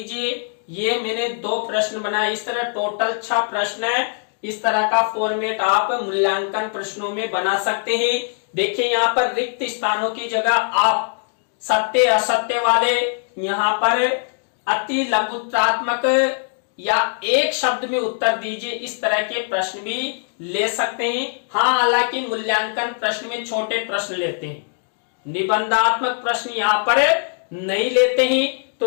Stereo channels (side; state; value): right; silent; 62 dB below the other